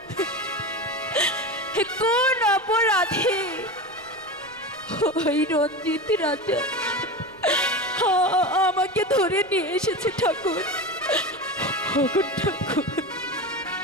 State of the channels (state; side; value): noise; right; rumble, 27 dB below the sound